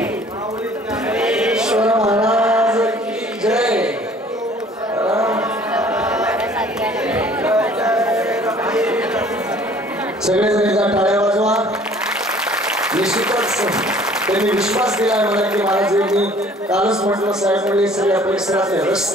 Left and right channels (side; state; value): both; normal; correlation 0.53